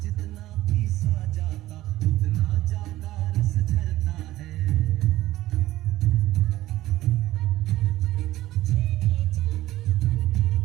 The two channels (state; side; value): quieter; left; 15.8 dB